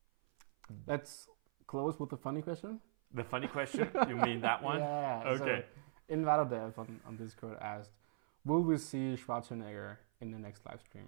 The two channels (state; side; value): silent; left; 51 dB below the other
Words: Let's close with the funny question. The funny question? You mean that one? Yeah. Okay. So Invadadev on Discord asked, will we see Schwarzenegger in the next live